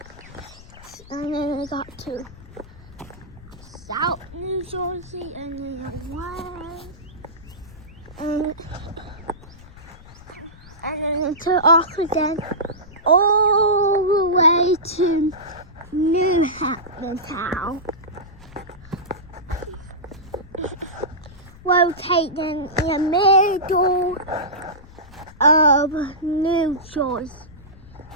South New Jersey, and then then to Oxford, all the way to New Hampton Town. Located in the middle of New Jersey,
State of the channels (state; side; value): noise; left; rumble, 20 dB below the sound